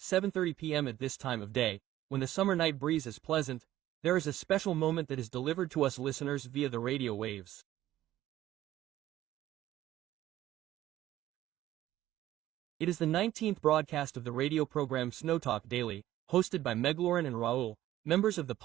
p.m. At this time of day, when the summer night breeze is pleasant, there is a special moment that is delivered to us listeners via the radio waves. It is the 19th broadcast of the radio program Snow Talk Daily, hosted by Megloren and Raul, members of the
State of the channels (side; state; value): left; quieter; 13.9 dB